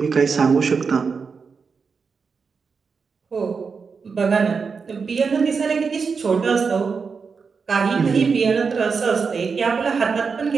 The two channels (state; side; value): quieter; left; 5.3 dB